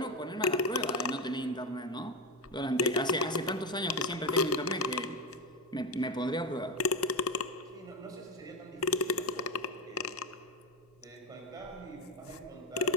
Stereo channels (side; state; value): both; normal; correlation 0.15